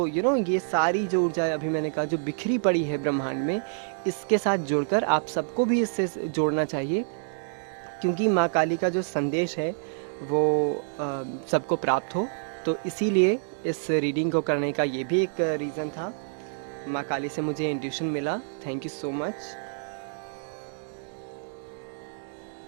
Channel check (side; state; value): left; silent; digital silence